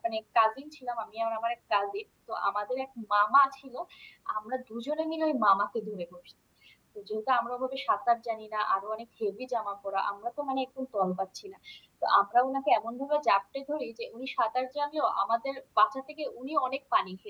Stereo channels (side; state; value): both; identical; correlation 1.00